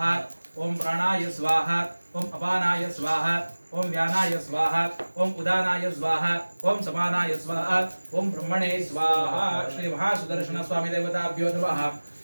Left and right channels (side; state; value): both; inverted; correlation -1.00